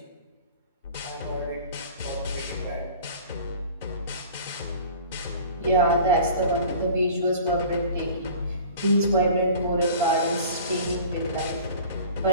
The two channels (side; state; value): both; inverted; correlation -0.43